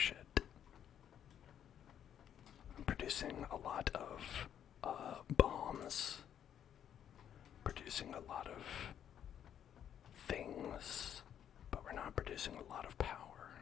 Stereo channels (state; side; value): quieter; right; 9.6 dB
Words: I'm producing a lot of bombs, producing a lot of things, but we're not producing a lot of power.